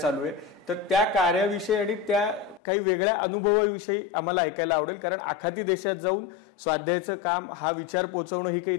आहे. तर त्या कार्याविषयी आणि त्या काही वेगळ्या अनुभवाविषयी आम्हाला ऐकायला आवडेल. कारण आखाती देशात जाऊन स्वाध्यायाचं काम, हा विचार पोचवणं ही काही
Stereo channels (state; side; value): drops out; right; at 2.6 s